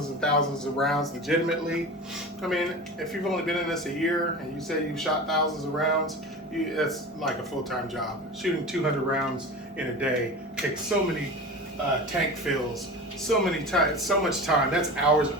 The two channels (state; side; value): normal; both; correlation 0.31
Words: and thousands of rounds legitimately. I mean, if you've only been in this a year and you say you've shot thousands of rounds, that's like a full-time job. Shooting 200 rounds in a day takes so many tank fills, so much time. That's hours